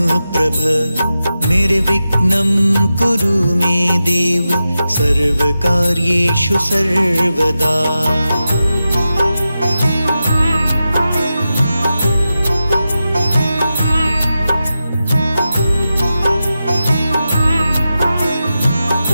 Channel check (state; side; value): inverted; both; correlation -0.91